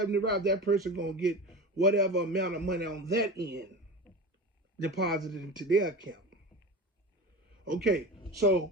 rides, that person going to get whatever amount of money on that end deposited into their account. Okay,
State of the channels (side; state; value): both; normal; correlation 0.30